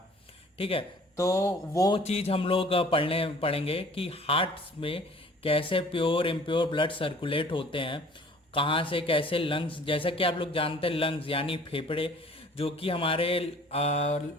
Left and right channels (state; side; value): normal; both; correlation 0.51